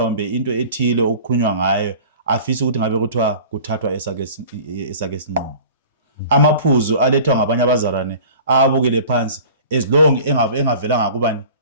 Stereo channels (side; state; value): both; inverted; correlation -0.43